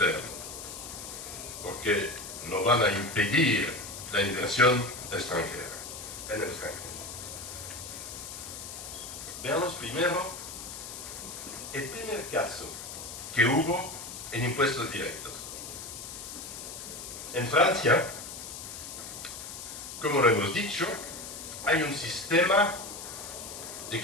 porque no van a impedir la inversión extranjera en el extranjero. Veamos primero el primer caso que hubo en impuestos directos. En Francia, como lo hemos dicho, hay un sistema de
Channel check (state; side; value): noise; left; hiss, 10 dB below the sound